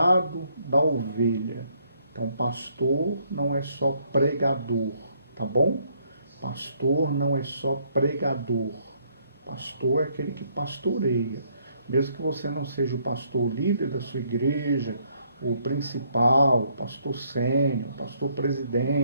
da ovelha. Então, pastor não é só pregador, tá bom? Pastor não é só pregador. Pastor é aquele que pastoreia. Mesmo que você não seja o pastor líder da sua igreja, o principal, o pastor sênior, pastor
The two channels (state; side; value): inverted; both; correlation -0.70